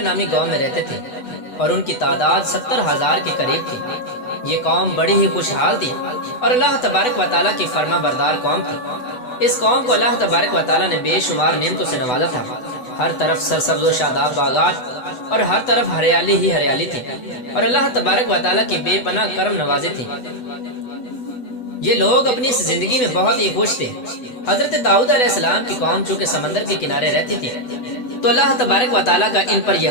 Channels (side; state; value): right; late; 8.0 ms